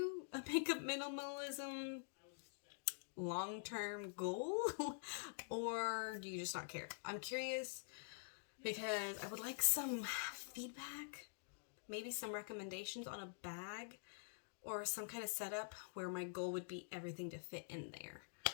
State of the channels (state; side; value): silent; right; digital silence